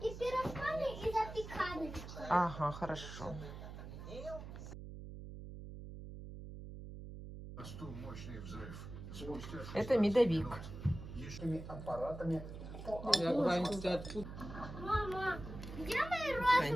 и пирожками, и запеканочкой. Ага, хорошо. Это медовик. Мама, где мои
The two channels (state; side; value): noise; right; hum, 11 dB below the sound